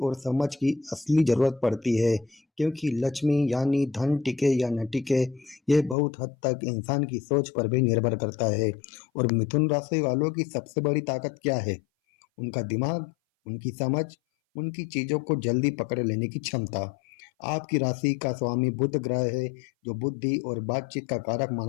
और समझ की असली ज़रूरत पड़ती है, क्योंकि लक्ष्मी यानी धन टिके या न टिके, ये बहुत हद तक इंसान की सोच पर भी निर्भर करता है। और मिथुन राशि वालों की सबसे बड़ी ताकत क्या है? उनका दिमाग, उनकी समझ, उनकी चीज़ों को जल्दी पकड़ लेने की क्षमता। आपकी राशि का स्वामी बुध ग्रह है, जो बुद्धि और बातचीत का कारक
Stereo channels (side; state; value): right; drops out; at 6.0 s